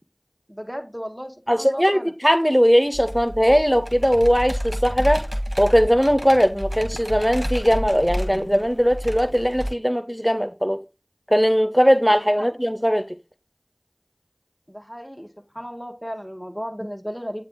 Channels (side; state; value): both; identical; correlation 1.00